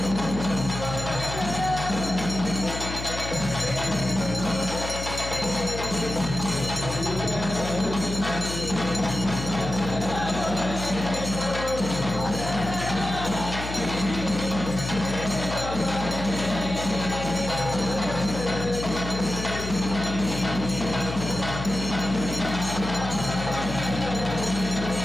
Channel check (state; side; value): noise; left; hum, 7 dB below the sound